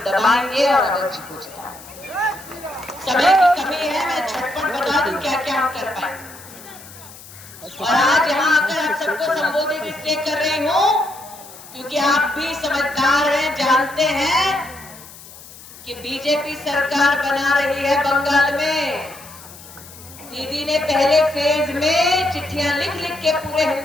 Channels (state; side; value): noise; left; hiss, 18 dB below the sound